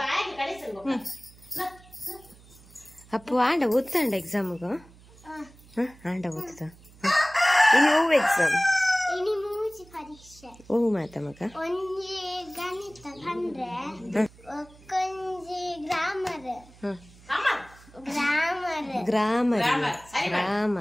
ಅಪ್ಪು ಆಂಡ ಓದ್ತಾಂಡ ಎಕ್ಸಾಮ್ಗ ಆಂಡ ಓದ್ತ ಇನ್ನು ಓ ಎಕ್ಸಾಮ್ ಓ ಮಾತ ಮಗ ಗ್ರಾಮರ್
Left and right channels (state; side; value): noise; right; hum, 24 dB below the sound